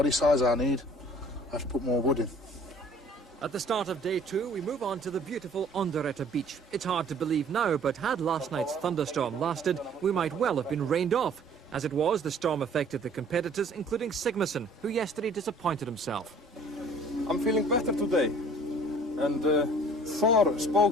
size I need, I have to put more wood in. At the start of day 2, we move on to the beautiful Onderetta beach. It's hard to believe now, but had last night's thunderstorm lasted, we might well have been rained off. As it was, the storm affected the competitors, including Sigmarsson, who yesterday disappointed himself. I'm feeling better today. And Thor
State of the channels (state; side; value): normal; both; correlation 0.52